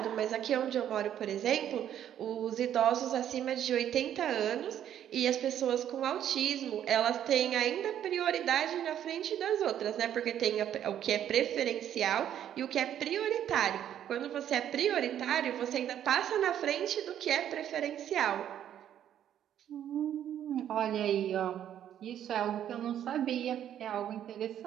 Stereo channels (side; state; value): left; quieter; 10.4 dB